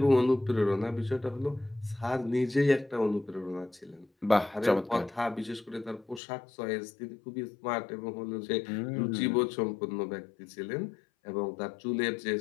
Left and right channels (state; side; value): drops out; right; at 6.2 s